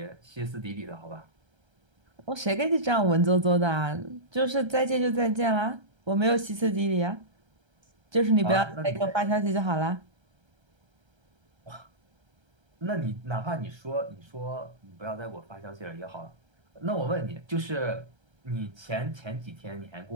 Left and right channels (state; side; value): late; left; 1.3 ms